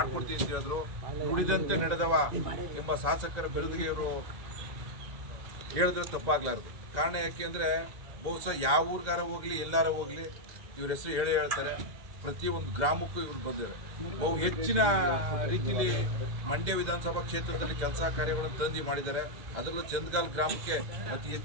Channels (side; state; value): left; late; 1.7 ms